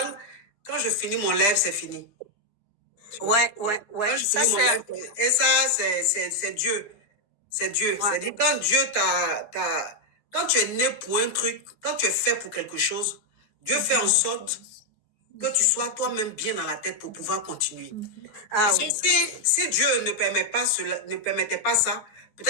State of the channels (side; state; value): right; late; 9.3 ms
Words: quand je finis mon live, c'est fini. Ouais. Quand je finis mon live, et ça, c'est Dieu. C'est Dieu. Ouais. C'est-à-dire, quand Dieu quand tu es né pour un truc, quand tu es fait pour quelque chose, Dieu fait en sorte que tu sois toi-même bien dans la tête pour pouvoir continuer. Parce que si Dieu ne permettait pas ça,